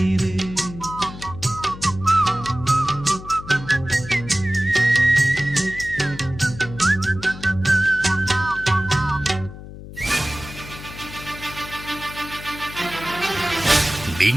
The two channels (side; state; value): left; noise; hum, 14 dB below the sound